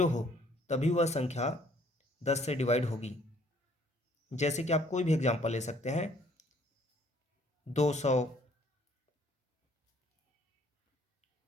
हो तभी वह संख्या 10 से डिवाइड होगी। जैसे कि आप कोई भी एग्जांपल ले सकते हैं, 200,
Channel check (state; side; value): normal; both; correlation 0.61